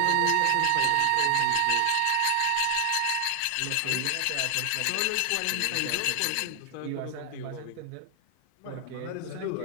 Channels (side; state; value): both; different; correlation 0.00